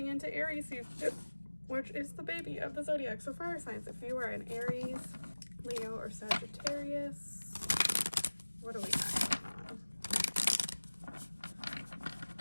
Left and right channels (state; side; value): inverted; both; correlation -1.00